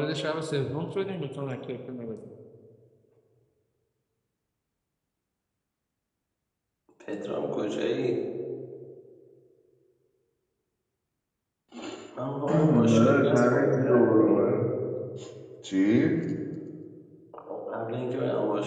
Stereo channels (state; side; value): identical; both; correlation 1.00